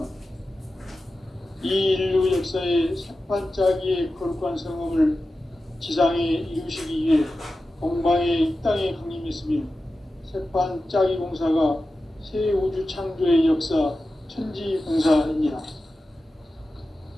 이 인류 역사의 새반짝이의 거룩한 성험을 지상에 이루시기 위해 동방의 이 땅에 강림했으며 새반짝이 공사가 새 우주 창조의 역사 천지공사입니다.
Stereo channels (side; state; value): both; normal; correlation 0.93